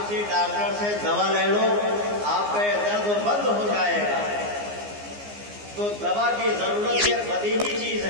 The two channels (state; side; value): late; left; 15 ms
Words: ڈاکٹر سے دوا لے لو، آپ کا درد بند ہو جائے گا. تو دوا کی ضرورت یہ بدیہی چیز